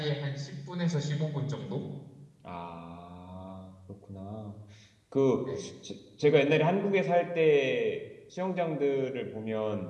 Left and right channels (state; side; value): identical; both; correlation 1.00